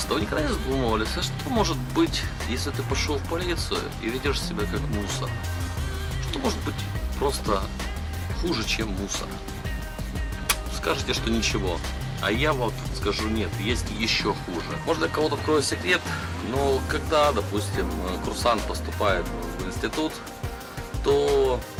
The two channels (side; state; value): both; identical; correlation 1.00